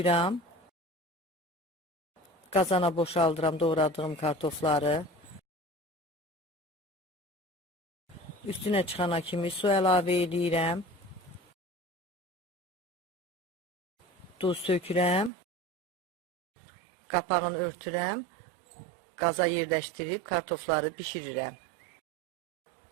Qazana boşaldıram doğradığım kartofları. Üstünə çıxana kimi su əlavə edirəm. Duz sökürəm. Qapağını örtürəm. Qaza yerləşdirib kartofları bişirirəm.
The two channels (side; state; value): left; drops out; at 15.3 s